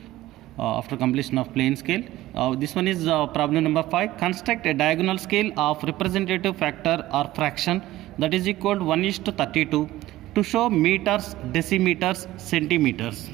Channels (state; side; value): quieter; left; 16.1 dB